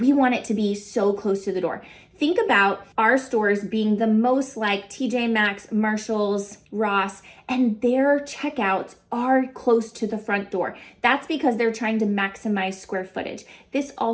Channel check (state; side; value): identical; both; correlation 1.00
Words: want it to be so close to the door. Think about our stores being the most like TJ Maxx, Marshalls, Ross, and their checkouts are close to the front door. That's because they're trying to maximize square footage. This